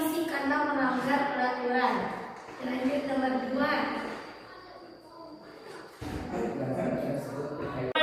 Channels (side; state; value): both; identical; correlation 1.00